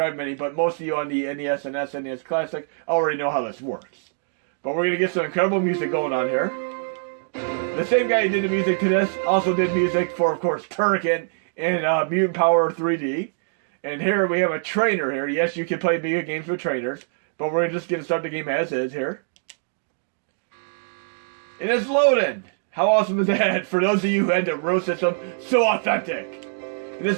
Mini, but most of you on the NES and SNES Classic already know how this works. But we're going to get some incredible music going on here. The same guy who did the music to this also did music for, of course, Turrican and Mutant Power 3D. And here we have a trainer here. Yes, you can play Amiga games with trainers, but we're just going to start the game as is here. And it's loading! How awesome is that? For those of you who had the row system, so authentic! And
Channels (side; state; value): left; silent; digital silence